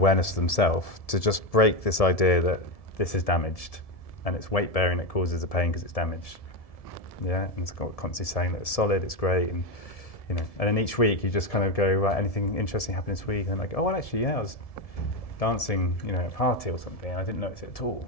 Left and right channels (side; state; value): right; late; 1.7 ms